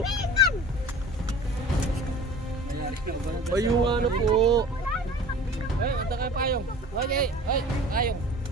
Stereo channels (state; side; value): normal; both; correlation 0.42